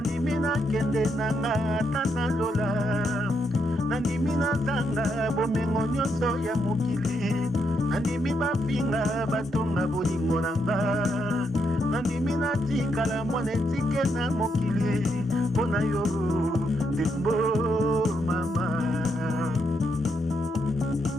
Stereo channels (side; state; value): both; normal; correlation 0.79